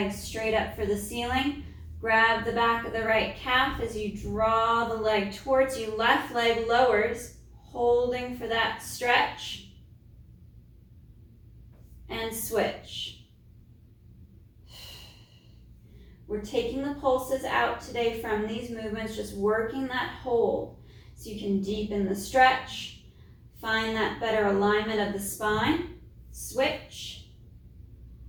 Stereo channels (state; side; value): identical; both; correlation 1.00